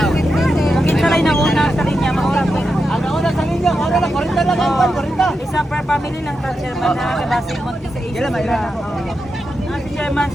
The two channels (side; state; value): both; normal; correlation 0.88